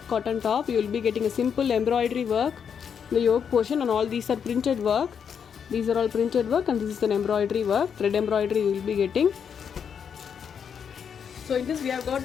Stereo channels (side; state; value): right; quieter; 7.3 dB